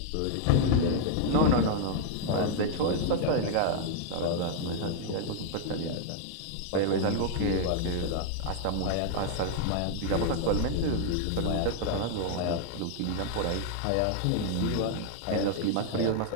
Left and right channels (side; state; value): both; different; correlation 0.00